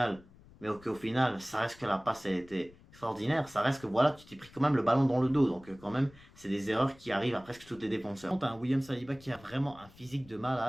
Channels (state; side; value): noise; left; rumble, 24 dB below the sound